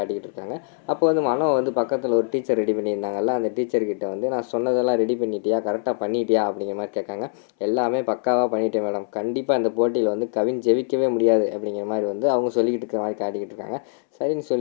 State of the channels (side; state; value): right; silent; 63 dB below the other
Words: இருக்காங்க. அப்போ வந்து மனோ வந்து பக்கத்தில் ஒரு டீச்சர் ரெடி பண்ணியிருந்தாங்கல்ல, அந்த டீச்சர்கிட்ட வந்து நான் சொன்னதெல்லாம் ரெடி பண்ணிட்டியா, கரெக்டாக பண்ணிட்டியா அப்படிங்கிற மாதிரி கேட்காங்க. எல்லாமே பக்காவாக பண்ணிட்டேன் மேடம், கண்டிப்பாக இந்த போட்டியில் வந்து கவின் ஜெயிக்கவே முடியாது அப்படிங்கிற மாதிரி வந்து அவங்க சொல்லிக்கிட்டு இருக்கிற மாதிரி காட்டிக்கிட்டு இருக்காங்க. சரின்னு